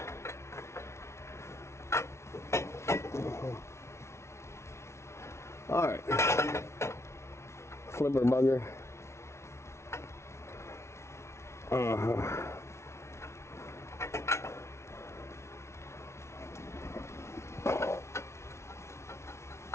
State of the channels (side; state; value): right; late; 0.13 ms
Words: All right, flipper bugger.